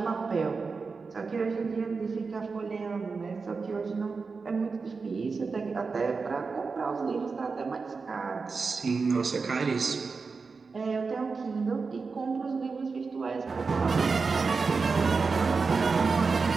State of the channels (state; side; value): quieter; left; 4.6 dB